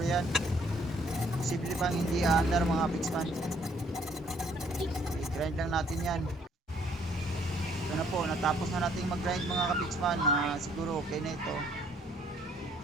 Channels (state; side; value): normal; both; correlation 0.64